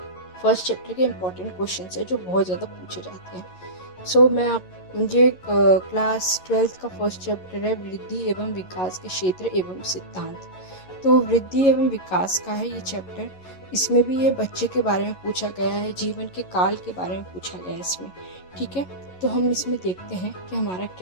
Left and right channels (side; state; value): right; late; 11 ms